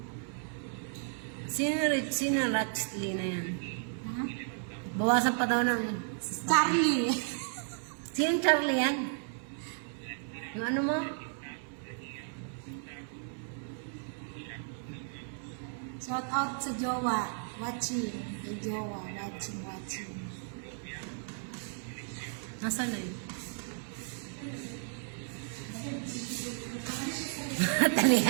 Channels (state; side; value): silent; left; 55 dB below the other